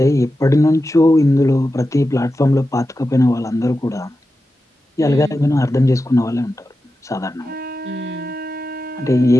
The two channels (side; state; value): both; normal; correlation 0.91